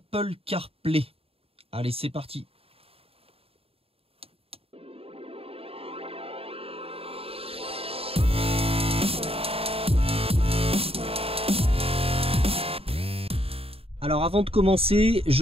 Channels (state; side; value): late; left; 0.28 ms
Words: CarPlay. Allez, c'est parti. Alors avant de commencer,